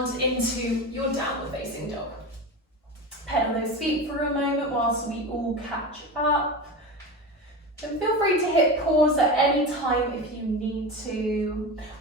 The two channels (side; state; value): both; normal; correlation 0.25